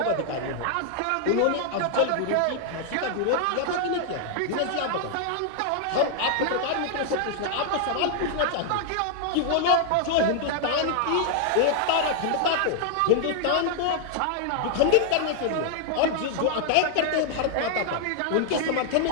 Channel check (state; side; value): different; both; correlation 0.00